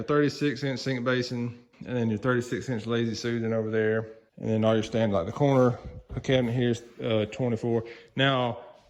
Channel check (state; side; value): identical; both; correlation 1.00